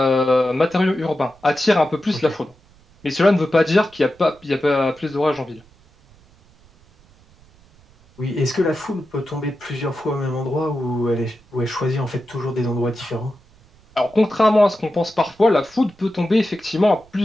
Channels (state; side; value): noise; right; rumble, 29 dB below the sound